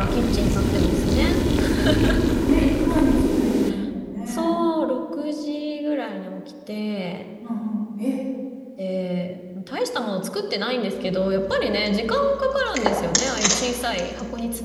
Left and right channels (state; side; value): identical; both; correlation 1.00